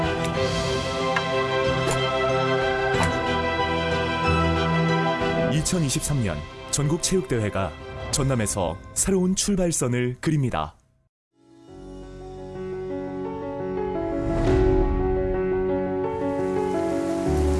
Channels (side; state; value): both; identical; correlation 1.00